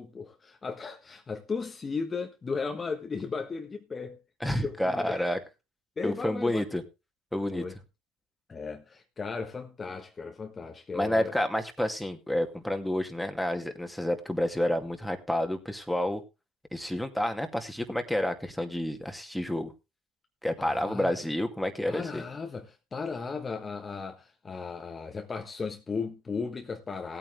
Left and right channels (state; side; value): normal; both; correlation 0.93